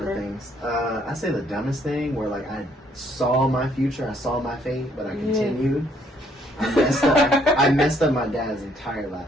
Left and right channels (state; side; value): normal; both; correlation 0.67